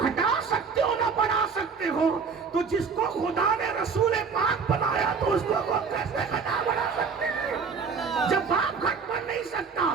سکتے ہو نہ بڑھا سکتے ہو، تو جس کو خدا نے رسول پاک بنایا تو اس کو کیسے گھٹا بڑھا سکتے ہیں؟ جب باپ گھٹ بڑھ نہیں سکتا،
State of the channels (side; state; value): left; quieter; 5.5 dB